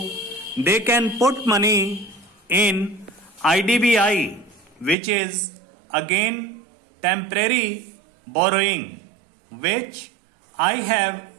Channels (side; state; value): left; drops out; at 5.0 s